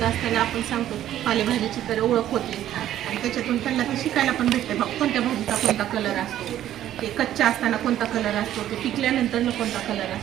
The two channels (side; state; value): left; quieter; 12.1 dB